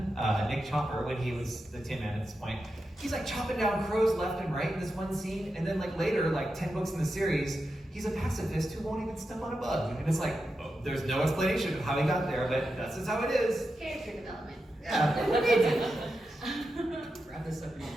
Nick Chopper, when he was the Tin Man at this point, he's like chopping down crows left and right in this one scene, and then like later, like 10 books in the series, he's a pacifist who won't even step on a bug, and it's like, oh, there's no explanation of how he got there, but that's just how it is. Character development. Yeah. Wrap this up in your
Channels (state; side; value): normal; both; correlation 0.89